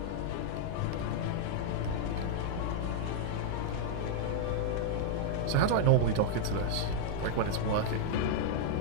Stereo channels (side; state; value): both; different; correlation -0.01